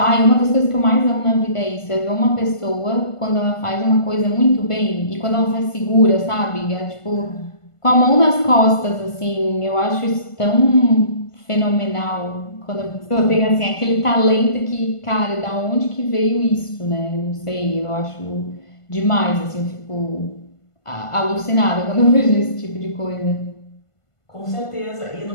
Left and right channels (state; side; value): late; right; 1.5 ms